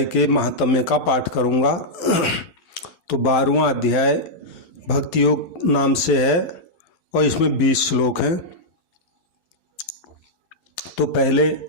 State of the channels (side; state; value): right; late; 12 ms